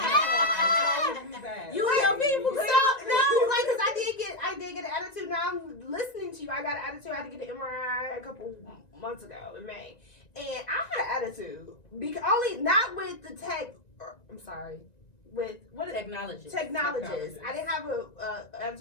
You and your people. So no, like, cause I did get an attitude. Now I'm listening to you. I got an attitude. I had to get an MRI a couple months ago in May, and I had an attitude because only not with the tech. I'm sorry. With what technologist. I didn't have a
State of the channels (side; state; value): right; late; 1.9 ms